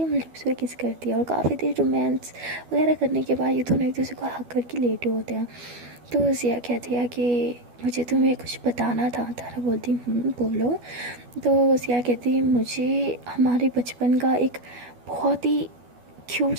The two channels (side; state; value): left; late; 12 ms